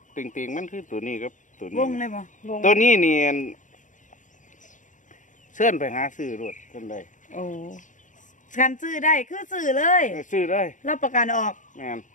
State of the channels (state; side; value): late; right; 0.37 ms